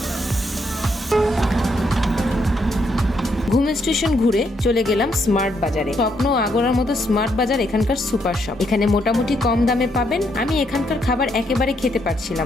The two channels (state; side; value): normal; both; correlation 0.75